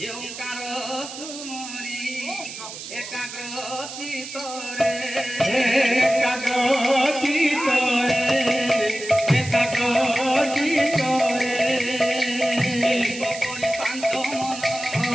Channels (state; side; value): noise; right; hiss, 11 dB below the sound